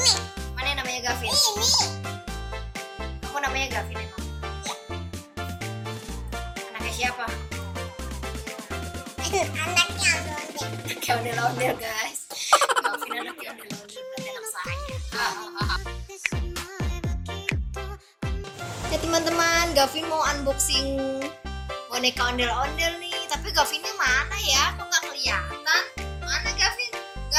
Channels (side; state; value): both; identical; correlation 1.00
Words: Mana yang namanya Gavin? Ini. Kamu namanya Gavin emang? Ya. Anaknya siapa? Anaknya ondel. Anaknya ondel-ondel guys. Gavin anaknya ondel-ondel berarti anak saya. Ya teman-teman, Gavin mau unboxing boneka ondel-ondel nih. Tapi Gavinnya mana ya? Kok nggak kelihatan? Mana Gavin?